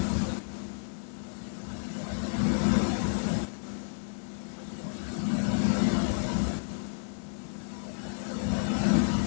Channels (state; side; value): silent; right; 57 dB below the other